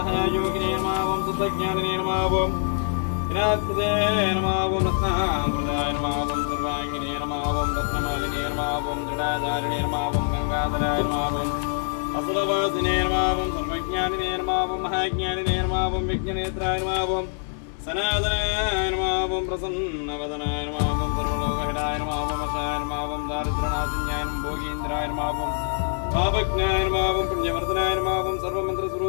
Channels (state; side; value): silent; right; 62 dB below the other